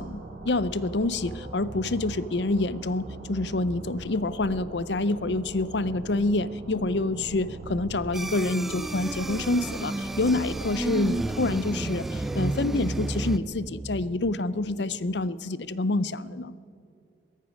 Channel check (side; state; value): both; normal; correlation 0.48